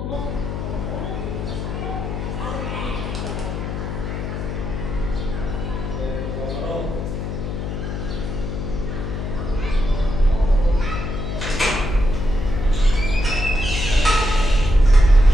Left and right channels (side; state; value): left; noise; hum, 4 dB below the sound